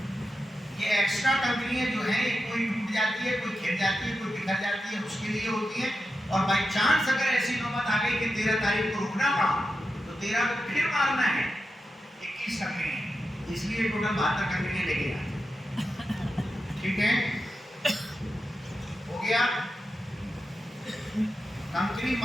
یہ ایکسٹرا کنکریاں جو ہیں یہ کوئی ٹوٹ جاتی ہے، کوئی کھل جاتی ہے، کوئی بکھر جاتی ہے، اس کے لیے ہوتی ہے، اور بائی چانس اگر ایسی نوبت آ گئی کہ 13 تاریخ کو رکنا پڑا تو 13 کو پھر مارنا ہے 21 کنکریاں، اس لیے ٹوٹل 72 کنکریاں لے کے آتے، ٹھیک ہے، ہو گیا۔ کنکری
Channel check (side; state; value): both; normal; correlation 0.89